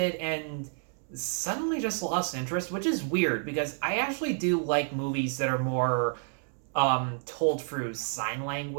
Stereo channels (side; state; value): left; silent; 58 dB below the other